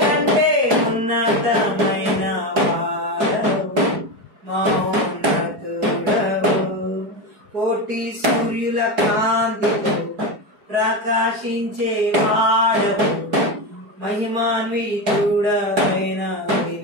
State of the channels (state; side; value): late; left; 4.8 ms